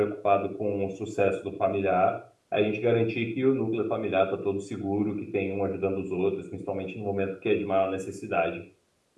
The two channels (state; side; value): identical; both; correlation 1.00